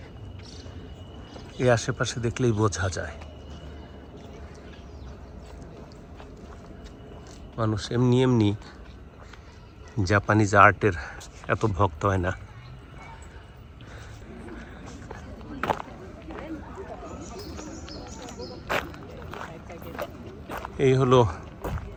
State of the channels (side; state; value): both; identical; correlation 1.00